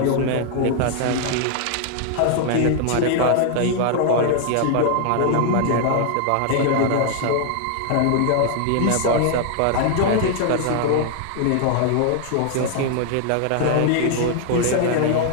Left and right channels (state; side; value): different; both; correlation 0.00